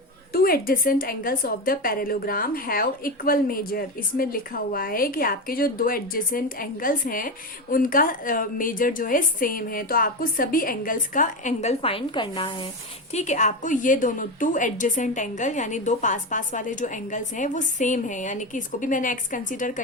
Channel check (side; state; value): both; normal; correlation 0.17